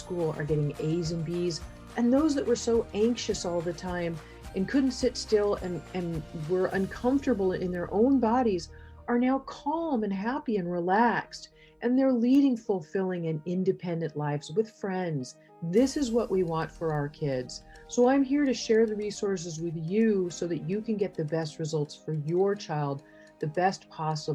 are getting A's and B's. And those that were so anxious all the time and couldn't sit still and were uncomfortable in their own bodies are now calm and happy and relaxed. And they're leading fulfilling and independent lives with friends. This is what we want for our kids. So I'm here to share the resources with you so that you can get the best results for your child, the best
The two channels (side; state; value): both; identical; correlation 1.00